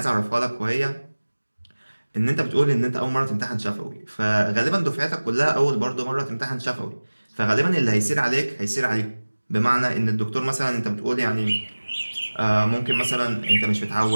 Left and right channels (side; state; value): both; inverted; correlation -1.00